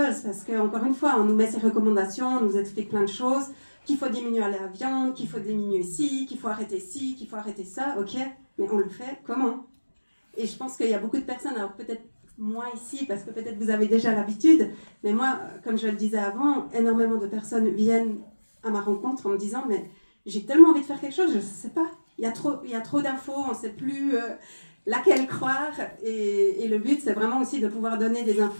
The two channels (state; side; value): inverted; both; correlation -1.00